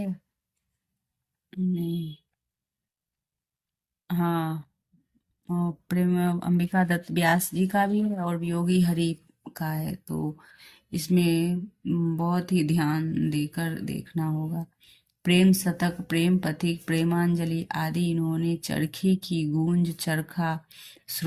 नहीं, हाँ, और प्रेम अंबिका दत्त व्यास जी का भी है और वियोगी हरि का है। तो इसमें बहुत ही ध्यान देकर देखना होगा। प्रेम शतक, प्रेम पथिक, प्रेमांजलि आदि इन्होंने चरखी की गूंज, चरखा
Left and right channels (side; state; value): both; identical; correlation 1.00